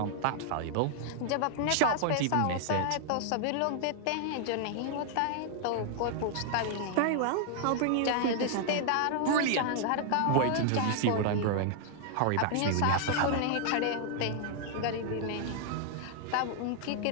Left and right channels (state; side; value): different; both; correlation 0.00